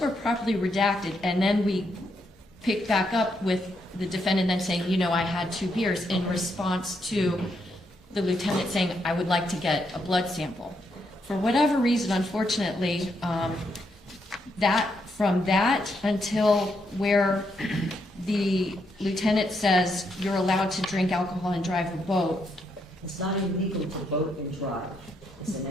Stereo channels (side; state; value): both; normal; correlation 0.78